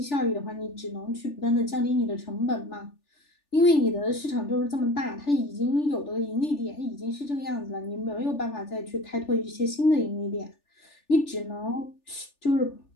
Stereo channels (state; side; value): late; right; 3.4 ms